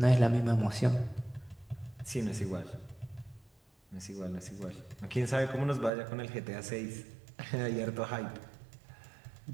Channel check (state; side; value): drops out; left; at 5.9 s